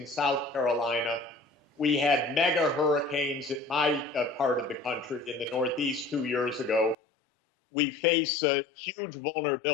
South Carolina. We had mega hurricanes in my part of the country in the Northeast 2 years ago. We face huge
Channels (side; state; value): right; drops out; at 7.0 s